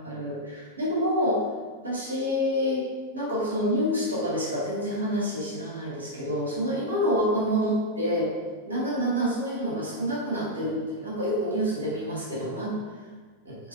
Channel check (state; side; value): normal; both; correlation -0.05